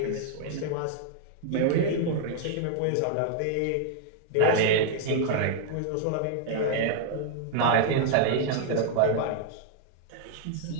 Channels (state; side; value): different; both; correlation -0.01